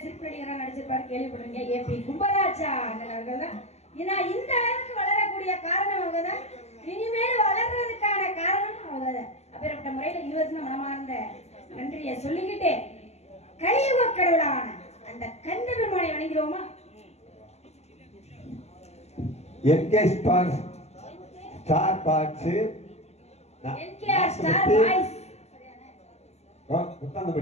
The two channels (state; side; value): late; right; 0.31 ms